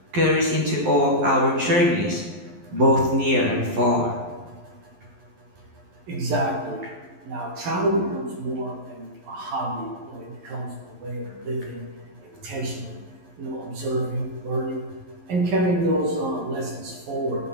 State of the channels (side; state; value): left; late; 11 ms